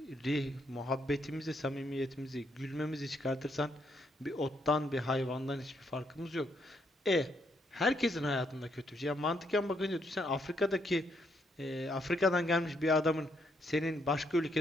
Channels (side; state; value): both; normal; correlation 0.75